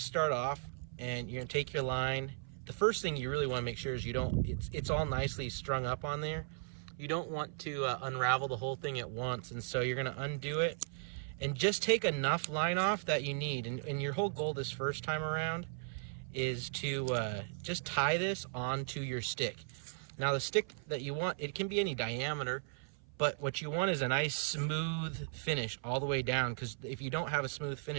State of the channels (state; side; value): silent; left; 53 dB below the other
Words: start off, and you're going to take your line. The first thing you really want to make sure is it's all nicely strung up on there. You don't want to unravel the whole thing at once, and so you're going to undo it and just take enough line off that you need. And your whole goal this first time around is to just tie this onto your stick. Now the stick that you want, it can be any diameter, but what you want is a nice smooth finish all the way down, because if you don't have a smooth